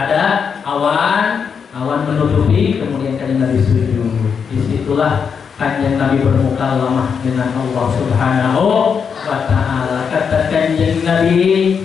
awan menutupi, kemudian kanjeng Nabi sujud. Disitulah kanjeng Nabi bermuka lemah dengan Allah Subhanahu wa Ta'ala. Kata kanjeng Nabi,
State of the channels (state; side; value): quieter; right; 6.5 dB